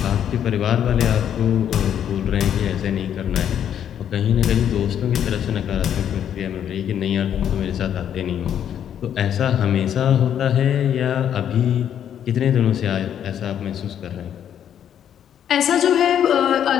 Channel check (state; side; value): quieter; right; 9.5 dB